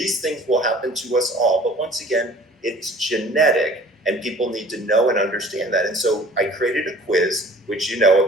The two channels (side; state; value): both; normal; correlation 0.49